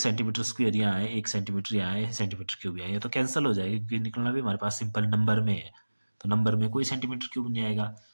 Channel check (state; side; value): inverted; both; correlation -1.00